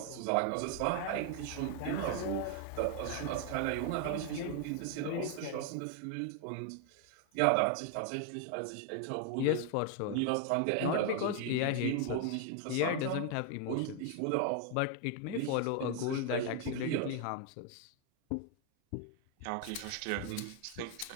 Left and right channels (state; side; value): different; both; correlation 0.00